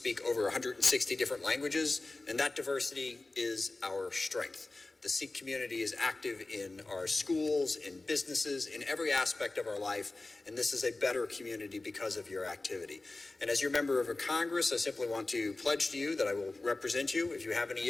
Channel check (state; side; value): quieter; right; 3.1 dB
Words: over 160 different languages, and that diversity is our strength. The Sikh community is active in our schools, in businesses, in every aspect of our life, and this is a better community because of your activity. And as your member of Congress, I simply want to pledge to you that I will represent you. If you have any